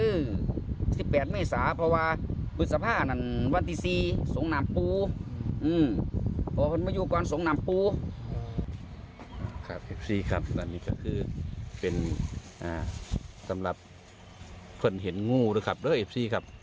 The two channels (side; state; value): both; identical; correlation 1.00